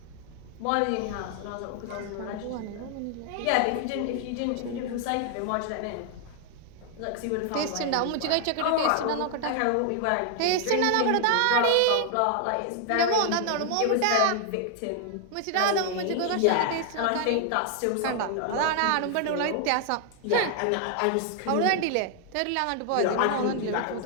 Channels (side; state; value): both; different; correlation 0.00